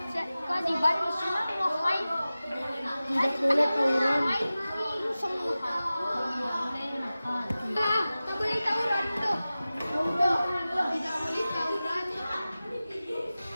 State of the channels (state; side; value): inverted; both; correlation -0.96